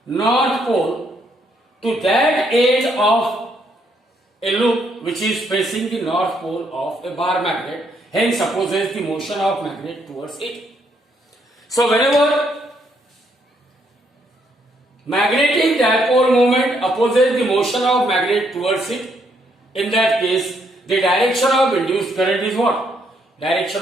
North Pole to that edge of a loop which is facing the North Pole of a bar magnet, hence opposes the motion of magnet towards it. So whenever magnetic dipole moment opposes the motion of magnet towards it, in that case the direction of induced current is what?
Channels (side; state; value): both; normal; correlation 0.73